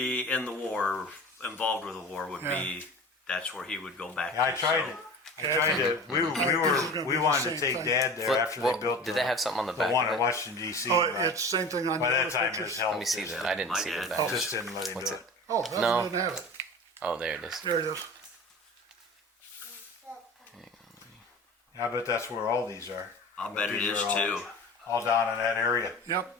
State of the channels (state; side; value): normal; both; correlation 0.36